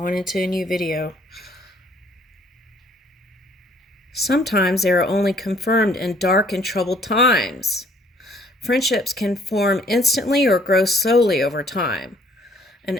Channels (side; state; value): both; normal; correlation 0.60